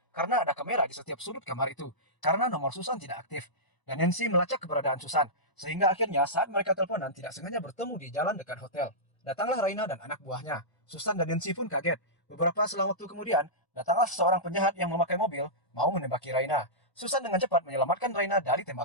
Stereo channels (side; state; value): right; late; 1.0 ms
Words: karena ada kamera di setiap sudut kamar itu. Karena nomor Susan tidak aktif. Dan Nancy melacak keberadaan Susan. Sehingga akhirnya saat mereka teleponan tidak sengaja bertemu di jalan dekat hotel. Datanglah Raina dan anak buahnya. Susan dan Nancy pun kaget. Beberapa selang waktu kemudian, datanglah seorang penjahat yang memakai mobil mau menembaki Raina. Susan dengan cepat menyelamatkan Raina dari